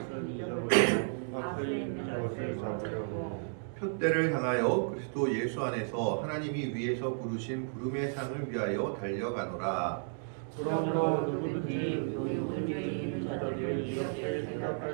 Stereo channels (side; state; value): left; silent; digital silence